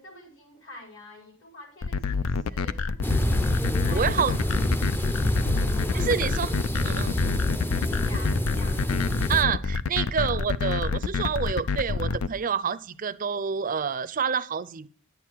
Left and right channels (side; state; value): both; normal; correlation 0.43